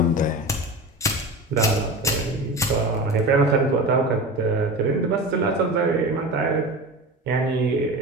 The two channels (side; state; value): both; normal; correlation 0.30